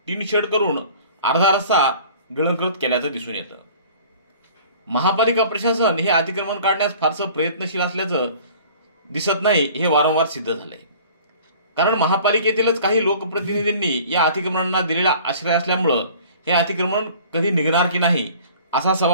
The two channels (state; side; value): inverted; both; correlation -0.48